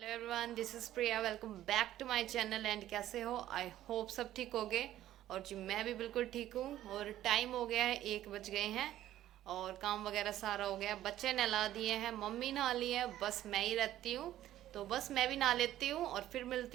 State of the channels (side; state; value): left; quieter; 13.2 dB